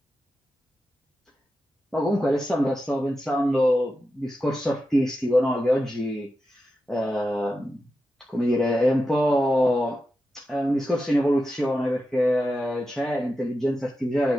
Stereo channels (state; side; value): normal; both; correlation 0.90